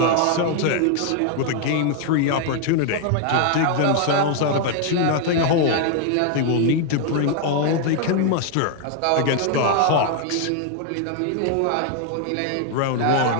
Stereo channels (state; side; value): different; both; correlation 0.00